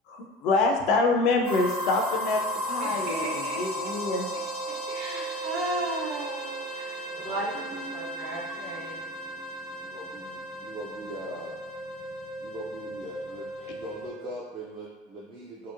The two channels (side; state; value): both; normal; correlation 0.35